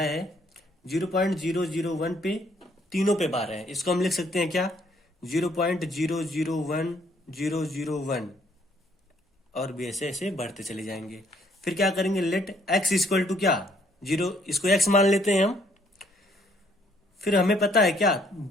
0.001 पे तीनों पे बार है, इसको हम लिख सकते हैं क्या 0.001001, और भी ऐसे ऐसे बढ़ते चले जाएंगे। फिर क्या करेंगे, लेट x इक्वल टू क्या 0, इसको x मान लेते हैं हम। फिर हमें पता है क्या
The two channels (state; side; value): normal; both; correlation 0.66